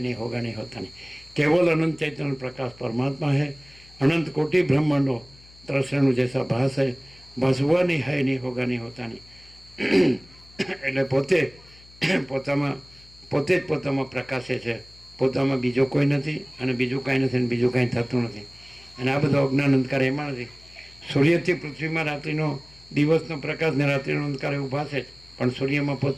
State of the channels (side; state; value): left; noise; hum, 24 dB below the sound